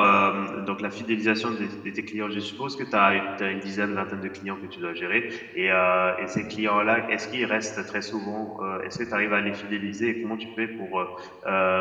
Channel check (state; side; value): identical; both; correlation 1.00